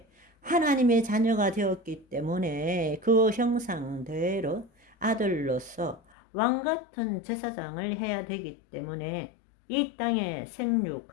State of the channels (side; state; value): right; drops out; at 6.0 s